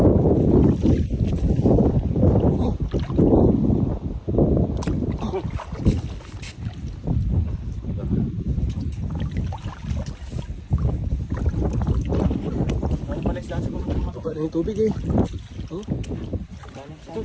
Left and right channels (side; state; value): both; identical; correlation 1.00